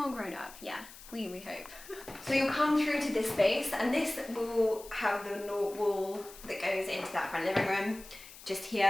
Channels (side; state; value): left; noise; hiss, 18 dB below the sound